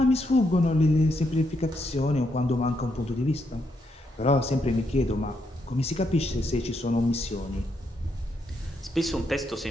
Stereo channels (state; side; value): normal; both; correlation 0.78